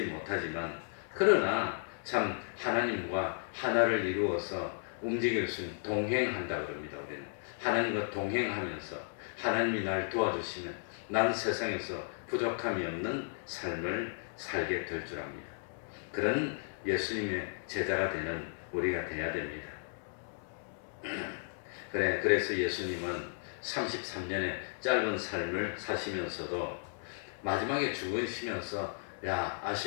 못하지만 그러나 참 하나님과 하나를 이루어서 움직일 수 있는 동행한다 그럽니다. 우리는 하나님과 동행하면서 하나님이 날 도와주시면 난 세상에서 부족함이 없는 삶을 살게 될 줄 압니다. 그런 예수님의 제자가 되는 우리가 되어야 됩니다. 그래서 예수님은 33년의 짧은 삶을 사시면서도 마지막에 죽으시면서 야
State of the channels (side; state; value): right; silent; digital silence